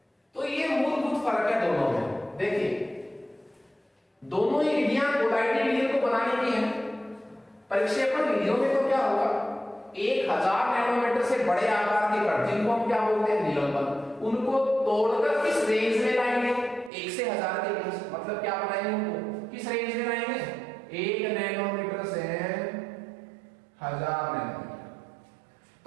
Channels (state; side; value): drops out; left; at 16.9 s